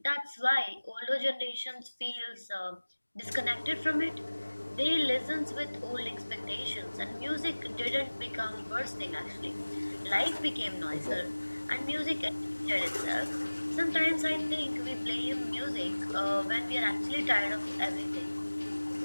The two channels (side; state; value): both; inverted; correlation -1.00